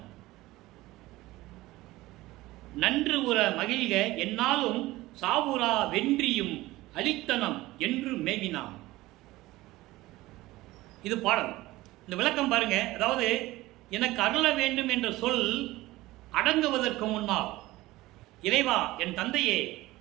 நன்று உற மகிழ்க என்னாலும் சாவுரா வென்றியும் அளித்தனம் என்று மேவினான். இது பாடல். இந்த விளக்கம் பாருங்க. அதாவது எனக்கு அருள வேண்டும் என்ற சொல் அடங்குவதற்கு முன்னால், இறைவா என் தந்தையே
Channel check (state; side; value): quieter; left; 18.3 dB